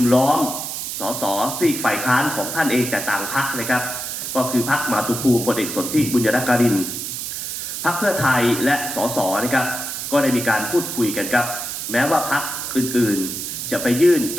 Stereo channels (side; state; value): right; noise; hiss, 5 dB below the sound